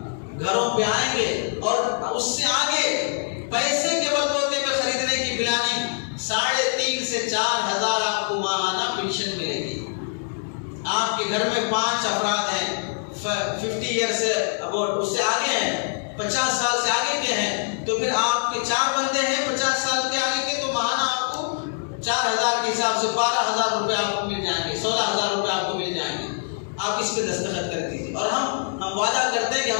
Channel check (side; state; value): right; silent; digital silence